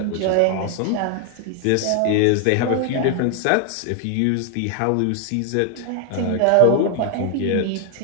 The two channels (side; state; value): both; different; correlation 0.00